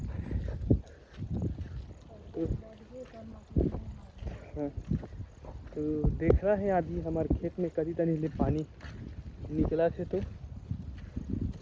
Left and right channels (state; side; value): identical; both; correlation 1.00